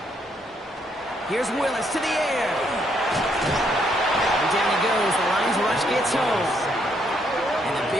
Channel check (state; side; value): normal; both; correlation 0.73